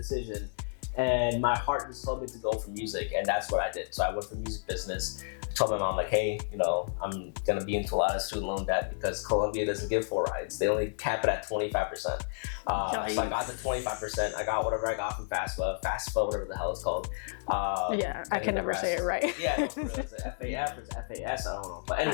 And my heart just told me to go for music, and that's what I did. So I went for music business. I told my mom, like, hey, I'm gonna be into a lot of student loan debt because Columbia doesn't give full rides. They only cap it at 25%. So I got the 25%. I got whatever I got from FAFSA, whatever the hell it's called. I can never say it right. Yeah, it's FAF or it's FAS, I don't know. But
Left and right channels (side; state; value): right; silent; digital silence